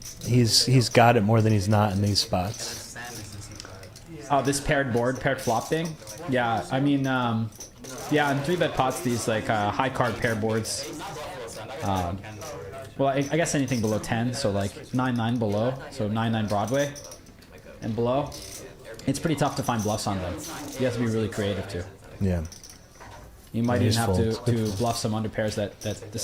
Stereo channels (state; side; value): identical; both; correlation 1.00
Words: he's got it more than he's not in these spots. Oh, this paired flop thing? Yeah, I mean, yeah, in 3-bet pots, these, like, high card pair boards, well, I guess anything below 10, so like 9-9 below, so 9-9 Broadway and below. It's pretty tough to find bluffs on them. You have to be really creative too. Yeah. You might even have to bluff some under pairs that